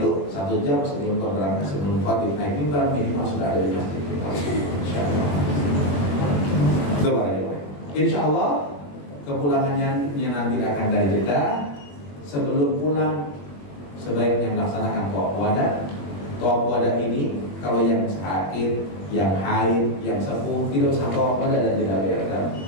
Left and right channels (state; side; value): late; right; 21 ms